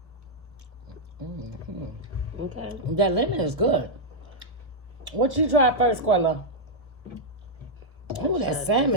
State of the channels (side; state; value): left; late; 1.2 ms